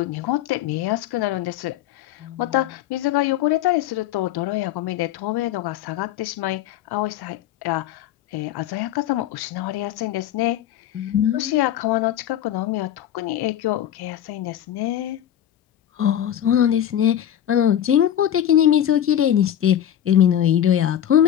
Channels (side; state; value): right; quieter; 10.9 dB